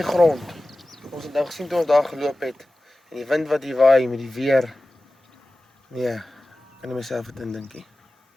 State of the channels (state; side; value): normal; both; correlation 0.96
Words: grond. Ons het nou gesien toe ons daar geloop het en die wind wat hier waai met die weer. Nee, kan ek myself dit indinkie.